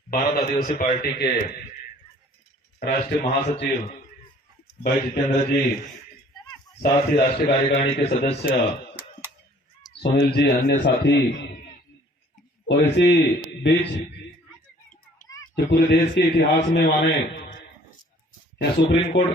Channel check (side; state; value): both; normal; correlation 0.55